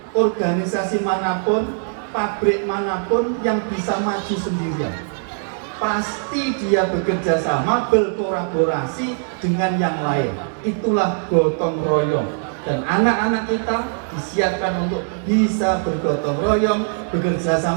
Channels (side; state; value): left; silent; 58 dB below the other